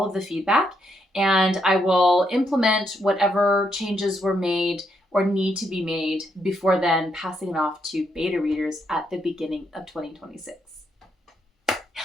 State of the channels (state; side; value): normal; both; correlation 0.77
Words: of the feedback, and I will implement whatever changes were made or need to be made before then, passing it off to beta readers at the beginning of 2026.